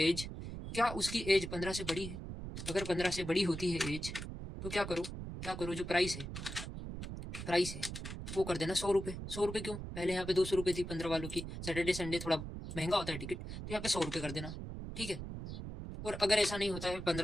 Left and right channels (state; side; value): noise; right; rumble, 7 dB below the sound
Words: क्या उसकी एज 15 से बड़ी है? अगर 15 से बड़ी होती है एज तो क्या करो? जो प्राइस है वो कर देना 100 रुपये। 100 रुपये क्यों? पहले यहाँ पे 200 रुपये थी 15 वालों की। सैटरडे संडे थोड़ा महंगा होता है टिकट, तो यहाँ पे 100 रुपये कर देना। ठीक है, और अगर ऐसा नहीं होता है,